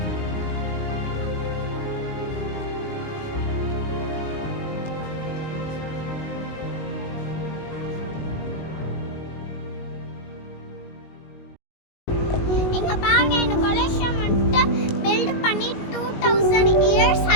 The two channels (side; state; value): right; late; 19 ms